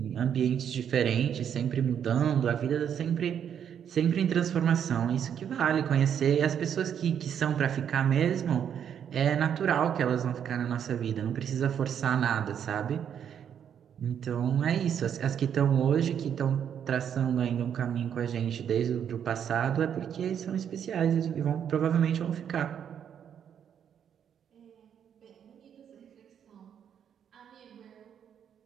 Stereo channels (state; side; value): quieter; left; 8.6 dB